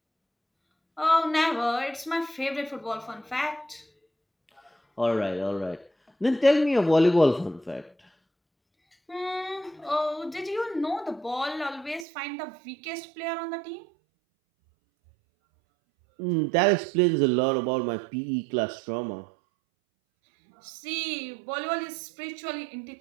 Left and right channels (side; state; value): left; drops out; at 12.1 s